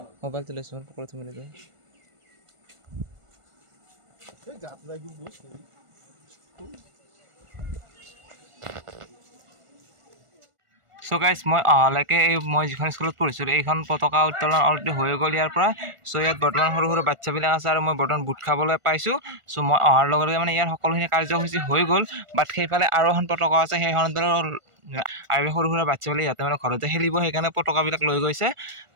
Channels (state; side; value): late; left; 1.4 ms